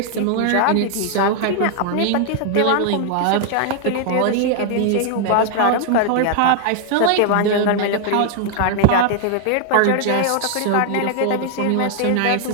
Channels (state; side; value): different; both; correlation 0.00